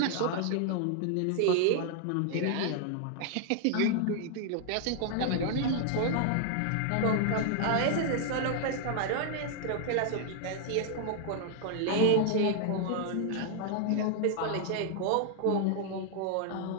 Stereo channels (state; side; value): different; both; correlation 0.00